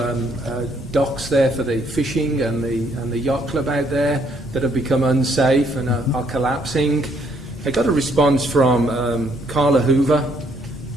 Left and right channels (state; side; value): normal; both; correlation 0.69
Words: docks there for the fishing and the yacht club out there that have become unsafe and are collapsing. I got a response from Carla Hoover